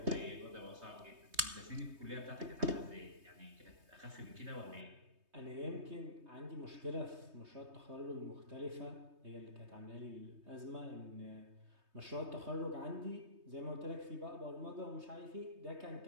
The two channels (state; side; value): late; left; 3.2 ms